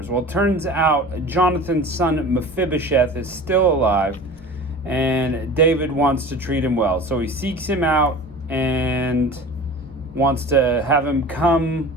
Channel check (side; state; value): both; normal; correlation 0.37